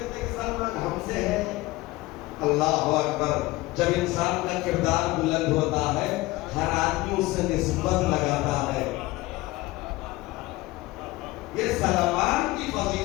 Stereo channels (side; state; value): right; quieter; 19.6 dB